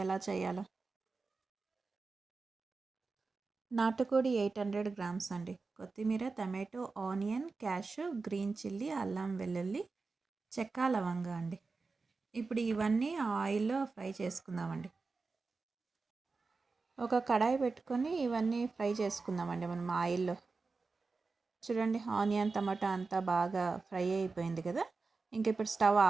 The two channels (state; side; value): quieter; left; 4.1 dB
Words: ఎలా చేయాలో. నాటుకోడి 800 గ్రామ్స్ అండి. కొత్తిమీర, tomato, onion, cash, green chilli, అల్లం వెల్లుల్లి, చెక్క, లవంగా అండి. ఇప్పుడు ఇవన్నీ ఆయిల్లో ఫ్రై చేసుకుందామండి. ఒక కడాయి పెట్టుకొని ఇవన్నీ ఫ్రై చేసుకుందామండి మనం ఆయిల్లో. చూడండి ఆనియన్, టమాటా అంతా బాగా ఫ్రై అయిపోయింది కదా. ఇంక ఇప్పుడు స్టవ్